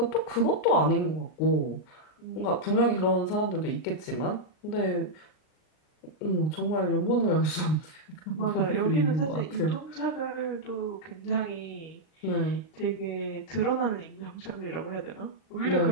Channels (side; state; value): right; late; 39 ms